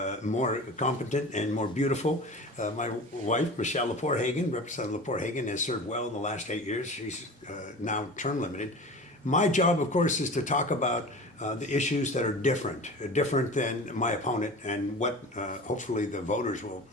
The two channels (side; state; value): both; normal; correlation 0.35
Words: more competent and more beautiful, my wife, Michelle Lepore Hagan. Representative Lepore Hagan has served well in the last 8 years. She's now term limited. My job, of course, is to talk about the issues that are different than my opponent and what hopefully the voters will